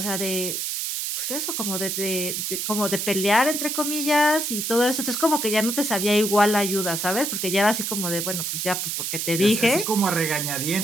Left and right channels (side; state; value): right; noise; hiss, 2 dB below the sound